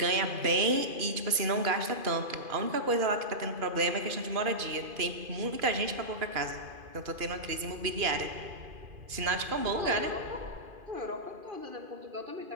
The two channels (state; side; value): late; left; 2.5 ms